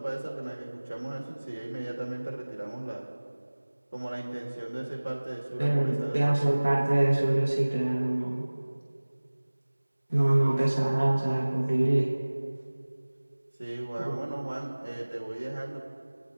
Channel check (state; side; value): inverted; both; correlation -1.00